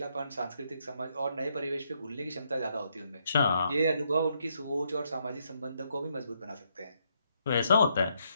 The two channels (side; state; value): both; inverted; correlation -0.76